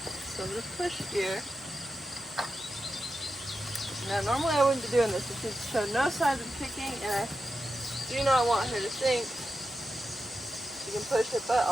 So I'm going to push here. Now normally I wouldn't be doing this, but she's showed no signs of kicking, and I do not want her to think she can push her butt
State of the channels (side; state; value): both; normal; correlation 0.90